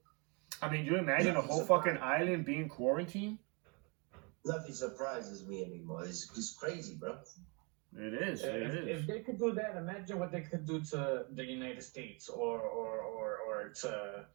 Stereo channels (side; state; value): left; quieter; 32.3 dB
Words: I mean, you imagine a whole fucking island being quarantined? Nothing surprises me anymore. It's crazy, bro. It is. If they could do that, imagine what they could do to the United States or to